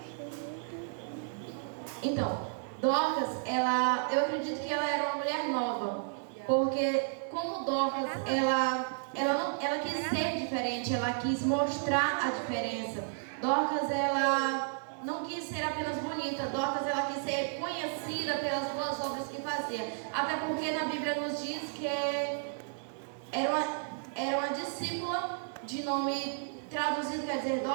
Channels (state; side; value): silent; left; 56 dB below the other